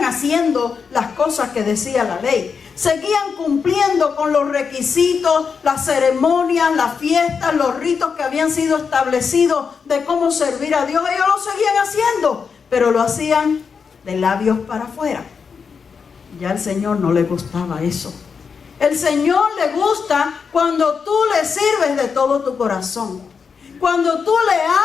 haciendo las cosas que decía la ley. Seguían cumpliendo con los requisitos, las ceremonias, las fiestas, los ritos que habían sido establecidos de cómo servir a Dios. Ellos lo seguían haciendo, pero lo hacían de labios para afuera. Ya al Señor no le gustaba eso. El Señor le gusta cuando tú le sirves de todo tu corazón. Cuando tú le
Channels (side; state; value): right; quieter; 5.9 dB